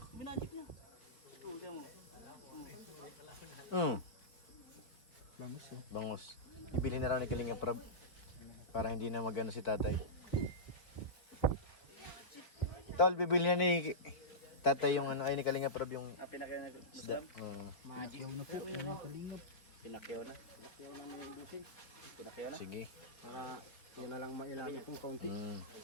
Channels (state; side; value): late; right; 4.4 ms